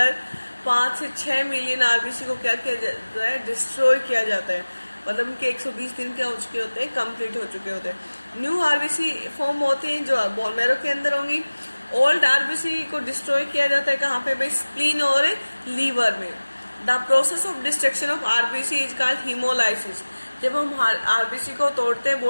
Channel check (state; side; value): inverted; both; correlation -1.00